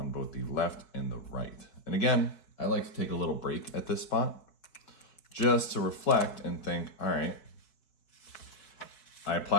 both the left and the right. And again, I like to take a little break at this spot just to reflect and think, all right, I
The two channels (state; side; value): late; right; 4.7 ms